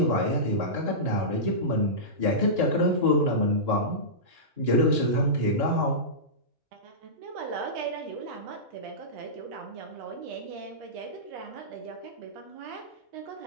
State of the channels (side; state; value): left; late; 2.9 ms